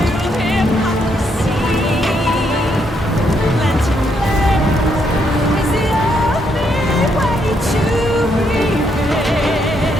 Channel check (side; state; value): both; normal; correlation 0.75